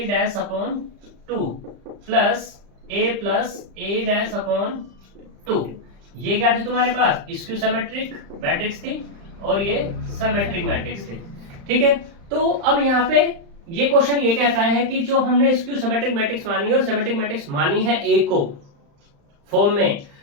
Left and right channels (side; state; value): left; late; 35 ms